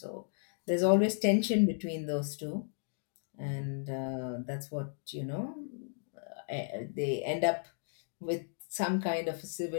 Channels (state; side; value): silent; right; digital silence